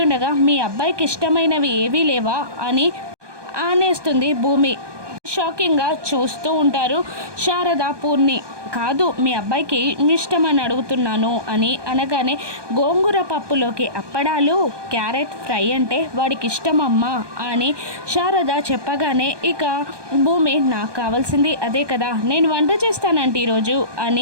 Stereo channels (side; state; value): left; late; 1.2 ms